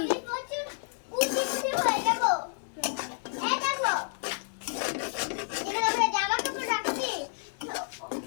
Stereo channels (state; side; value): silent; right; digital silence